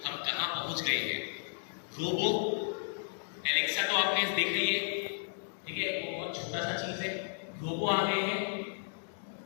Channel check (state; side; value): silent; right; digital silence